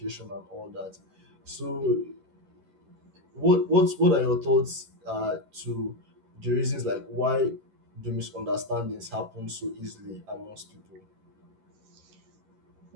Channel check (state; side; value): late; left; 11 ms